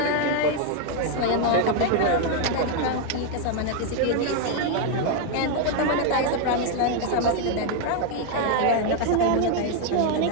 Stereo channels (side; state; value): both; different; correlation 0.01